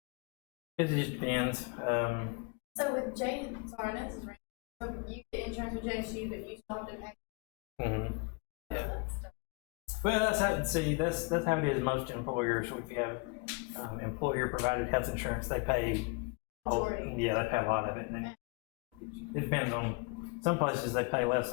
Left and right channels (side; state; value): right; quieter; 30.1 dB